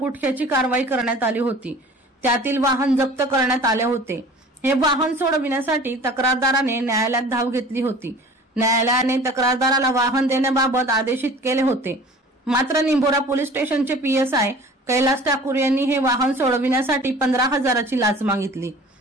कारवाई करण्यात आली होती। त्यातील वाहन जप्त करण्यात आले होते। हे वाहन सोडविण्यासाठी तक्रारदाराने न्यायालयात धाव घेतली होती। न्यायालयाने तक्रारदाराला वाहन देण्याबाबत आदेशित केले होते। मात्र निंभोरा पोलीस स्टेशनचे पीएसआय कैलास ठाकूर यांनी हे वाहन सोडविण्यासाठी 15,000ची लाच मागितली।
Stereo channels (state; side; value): normal; both; correlation 0.45